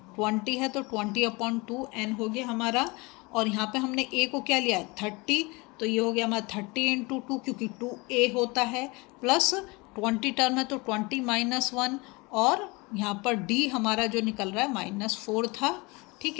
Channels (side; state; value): right; quieter; 25.7 dB